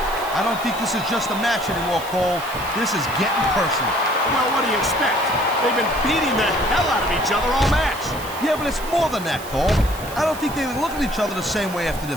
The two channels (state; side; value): noise; right; hiss, 15 dB below the sound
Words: I don't think this is just a match anymore, Cole. This is getting personal. Well, what do you expect? They've been beating the hell out of each other all match. Yeah, but it's more than that, Cole. I don't think they look at each other the same way after